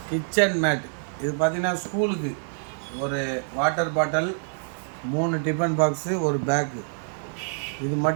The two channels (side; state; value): left; silent; digital silence